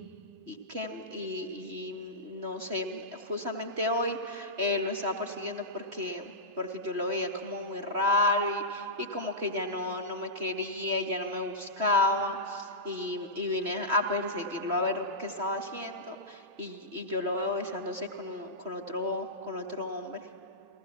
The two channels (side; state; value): left; late; 3.1 ms